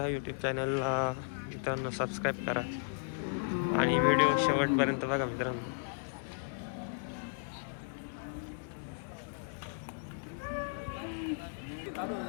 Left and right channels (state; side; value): silent; right; 55 dB below the other